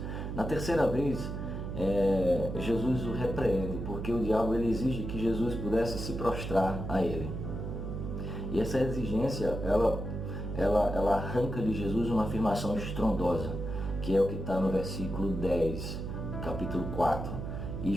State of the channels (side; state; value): right; noise; hum, 5 dB below the sound